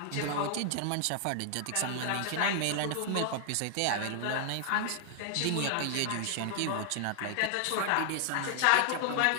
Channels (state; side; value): different; both; correlation 0.00